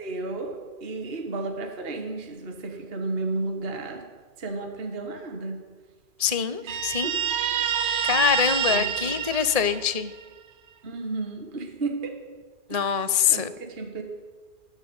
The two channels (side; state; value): left; late; 2.4 ms